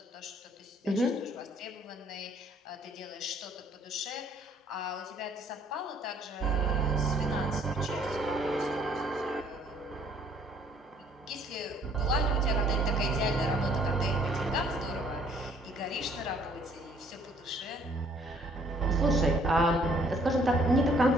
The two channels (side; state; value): both; normal; correlation 0.62